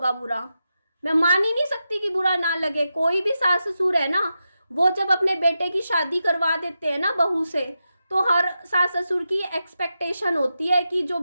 बुरा। मैं मान ही नहीं सकती कि बुरा ना लगे। कोई भी सास ससुर है ना, वो जब अपने बेटे की शादी करवा देते हैं ना बहू से, तो हर सास ससुर की एक्सपेक्टेशन होती है कि जो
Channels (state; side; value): inverted; both; correlation -0.89